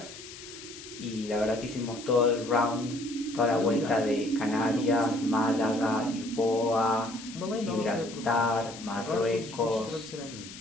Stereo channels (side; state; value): left; noise; hiss, 14 dB below the sound